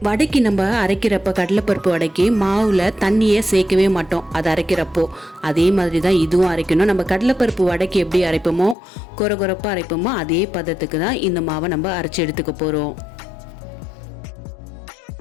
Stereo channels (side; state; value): right; drops out; at 8.8 s